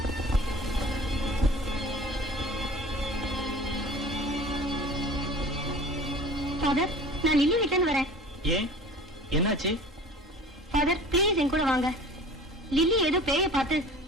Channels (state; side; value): normal; both; correlation 0.42